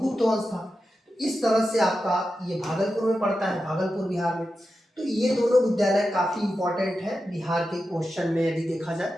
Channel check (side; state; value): both; normal; correlation 0.91